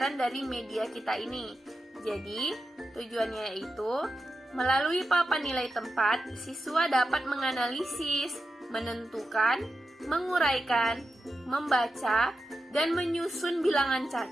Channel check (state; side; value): normal; both; correlation 0.89